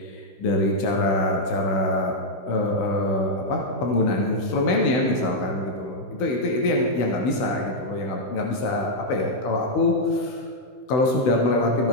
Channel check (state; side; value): late; right; 16 ms